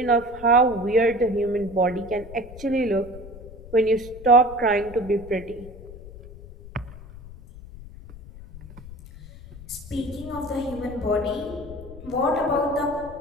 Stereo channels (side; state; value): left; noise; rumble, 16 dB below the sound